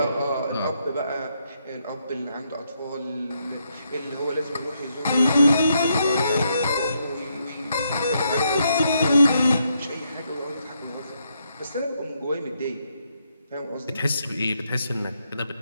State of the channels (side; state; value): both; inverted; correlation -0.78